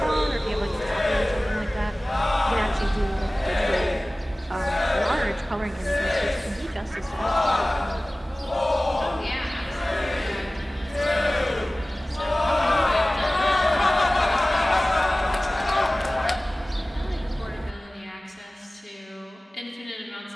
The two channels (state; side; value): normal; both; correlation 0.98